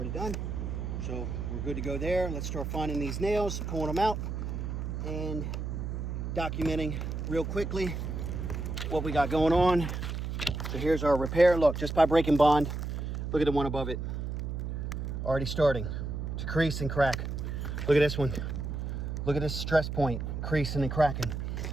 done. So we're good to go there. Let's start finding these nails, pulling them out, and documenting real quickly what we got going on. So here's our repair. Look, just by breaking bond, look at the one above it. Already starting to crease and crack. Look at this one. Look at this stress point, creasing and cracking.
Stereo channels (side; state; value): right; noise; hum, 4 dB below the sound